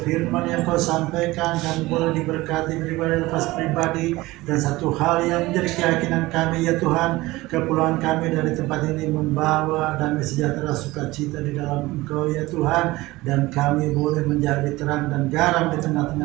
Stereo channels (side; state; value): left; quieter; 19.6 dB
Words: yang Kau sampaikan kami boleh diberkati pribadi lepas pribadi. Dan satu hal yang menjadi keyakinan kami ya Tuhan, kepulangan kami dari tempat ini membawa damai sejahtera sukacita di dalam Engkau ya Tuhan, dan kami boleh menjadi terang dan garam di